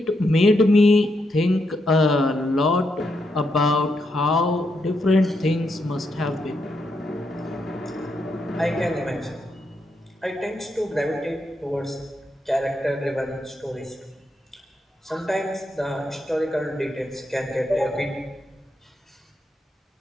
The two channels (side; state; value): both; normal; correlation 0.81